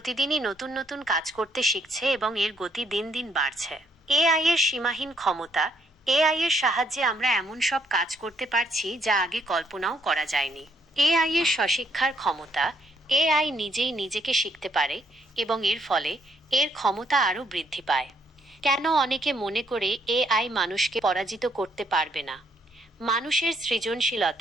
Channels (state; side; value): normal; both; correlation 0.70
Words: নতুন নতুন কাজ করতে শিখছে এবং এর গতি দিন দিন বাড়ছে। এআই এর সীমাহীন ক্ষমতা। এআই এর সাহায্যে আমরা এমন সব কাজ করতে পারছি যা আগে কল্পনাও করা যায়নি। এআই এর স্বশিক্ষার ক্ষমতা। এআই নিজেই নিজেকে শিখতে পারে এবং এর ফলে এর ক্ষমতা আরও বৃদ্ধি পায়। কেন অনেকে মনে করে এআই মানুষকে পরাজিত করতে পারবে না? মানুষের